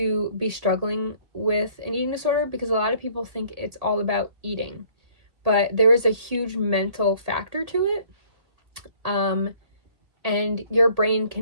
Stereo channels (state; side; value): late; left; 1.8 ms